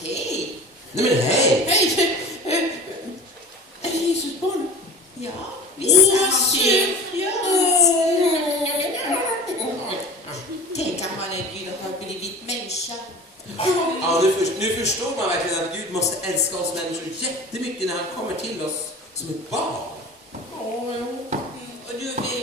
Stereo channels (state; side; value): normal; both; correlation 0.37